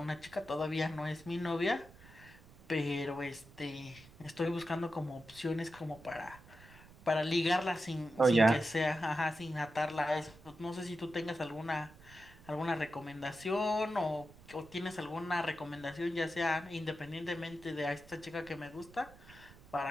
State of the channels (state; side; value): noise; right; rumble, 21 dB below the sound